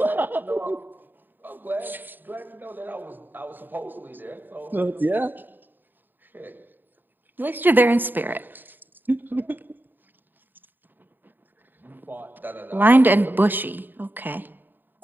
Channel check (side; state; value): left; late; 0.092 ms